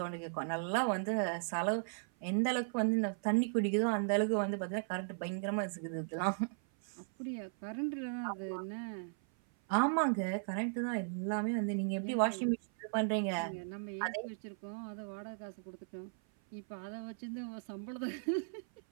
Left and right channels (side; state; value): left; silent; 53 dB below the other